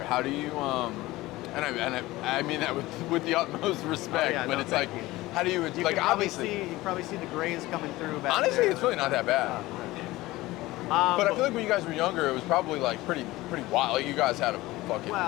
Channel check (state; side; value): quieter; right; 18.7 dB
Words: how do you I mean that with the utmost respect, yeah, but no, it's thank like you. how do you You like can obviously you probably see the grays coming through back honestly there. it's really not that bad. But I feel like when you guys were younger, it was probably like pretty wild. Like you guys had a fucking